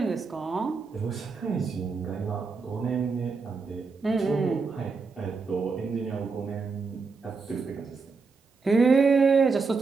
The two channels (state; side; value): quieter; left; 4.6 dB